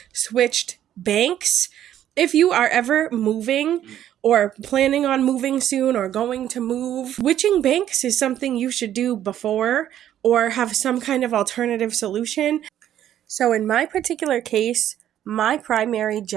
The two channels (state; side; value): quieter; left; 11.2 dB